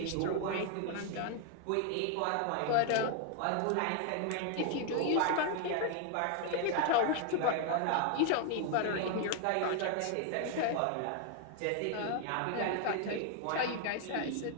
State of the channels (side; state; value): both; different; correlation 0.00